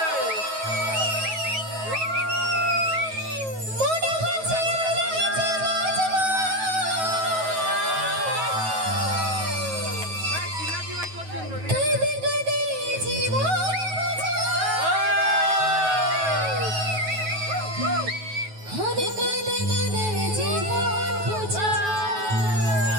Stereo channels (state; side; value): late; left; 9.3 ms